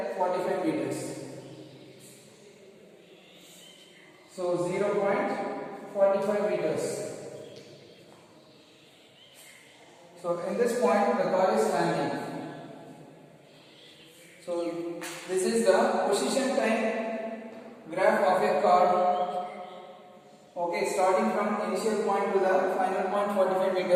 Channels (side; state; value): both; identical; correlation 1.00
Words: 45 meters. So 0.45 meters. So in this point the car is standing. So this is the position time graph of a car. Okay, starting from initial point to the final point 45